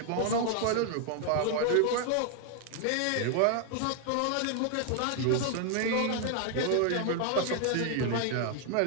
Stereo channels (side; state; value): both; different; correlation 0.00